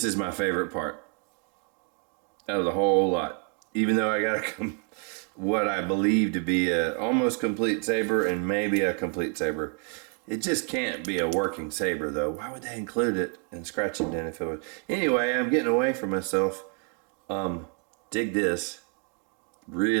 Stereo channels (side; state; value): left; quieter; 36.4 dB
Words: is my favorite part out of the whole lot. Even though I got what I believe to be a almost complete Saber and maybe a complete Saber. It just can't be a working Saber though. Why would they include it in scratch and dent if it was? Anyway, I'm getting away from myself. Dig this.